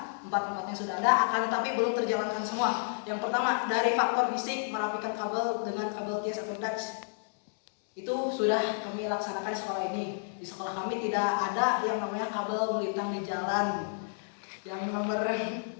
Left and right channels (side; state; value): right; silent; digital silence